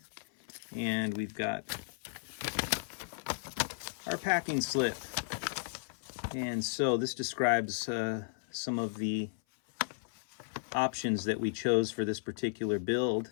and we've got our packing slip. And so this describes some of the options that we chose for this particular build.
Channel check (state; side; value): silent; right; 55 dB below the other